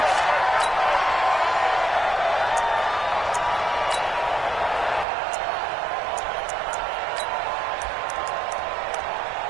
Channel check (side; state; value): left; drops out; at 5.1 s